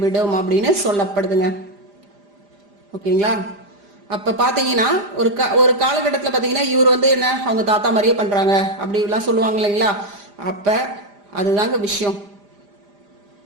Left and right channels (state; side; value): late; left; 5.0 ms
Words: விடும் அப்படின்னு சொல்லப்படுதுங்க. ஓகேங்களா? அப்ப பாத்தீங்கன்னா ஒரு காலகட்டத்துல பாத்தீங்கன்னா இவர் வந்து என்ன, அவங்க தாத்தா மாதிரியே பண்றாங்க அப்படி எல்லாம் சொல்லுவாங்க இல்லைங்களா? அப்ப அதுதாங்க விஷயம்.